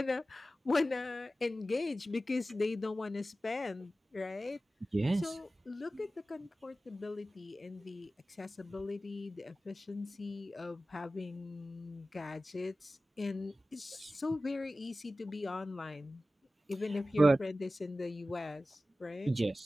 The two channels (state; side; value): normal; both; correlation 0.95